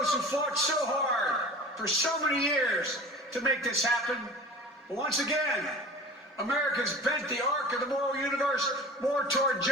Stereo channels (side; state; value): both; normal; correlation 0.39